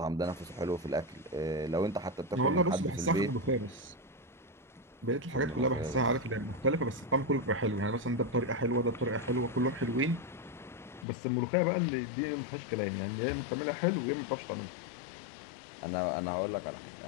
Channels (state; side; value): drops out; right; at 11.1 s